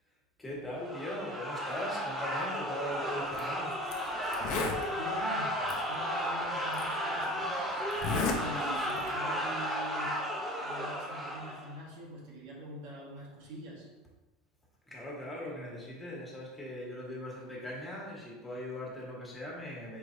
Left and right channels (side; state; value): both; normal; correlation 0.41